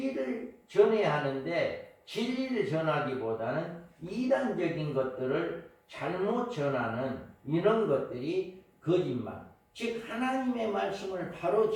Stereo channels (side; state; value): both; identical; correlation 1.00